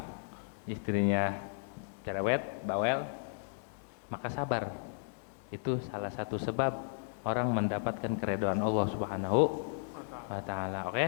istrinya cerewet, bawel, maka sabar. Itu salah satu sebab orang mendapatkan keridhaan Allah Subhanahu wa taala. Oke?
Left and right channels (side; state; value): right; silent; digital silence